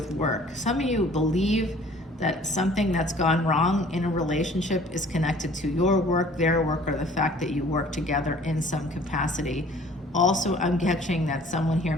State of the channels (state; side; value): normal; both; correlation 0.52